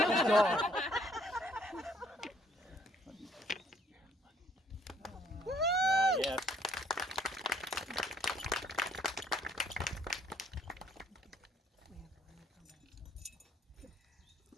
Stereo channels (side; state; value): both; normal; correlation 0.63